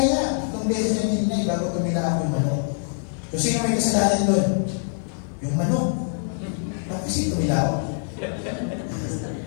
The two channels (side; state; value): right; silent; digital silence